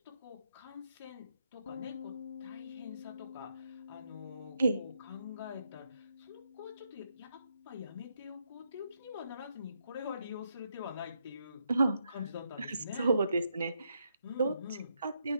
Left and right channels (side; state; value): both; inverted; correlation -0.78